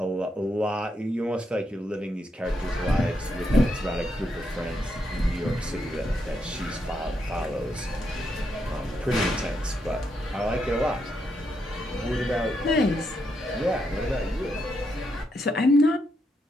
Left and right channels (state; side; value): normal; both; correlation 0.80